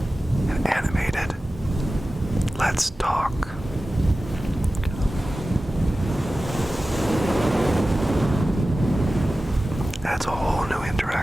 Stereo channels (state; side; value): normal; both; correlation 0.95